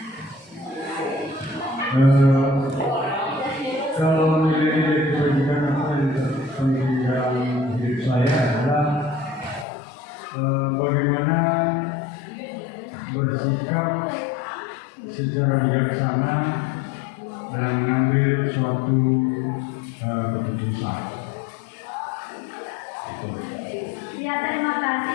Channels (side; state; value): right; drops out; at 9.7 s